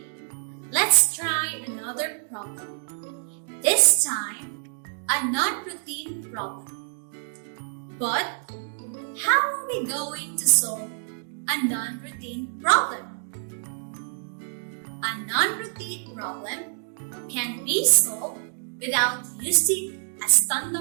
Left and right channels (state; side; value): silent; left; digital silence